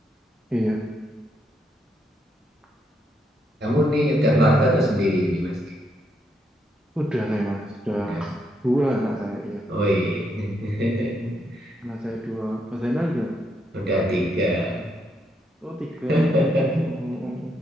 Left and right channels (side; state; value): both; normal; correlation 0.77